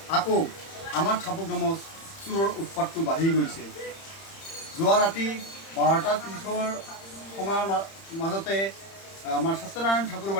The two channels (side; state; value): right; late; 31 ms